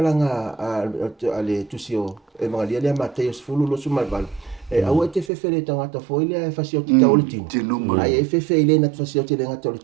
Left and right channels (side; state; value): left; drops out; at 5.3 s